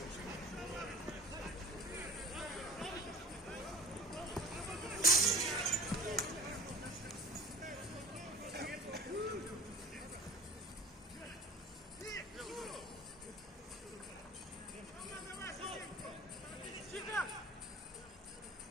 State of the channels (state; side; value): normal; both; correlation 0.40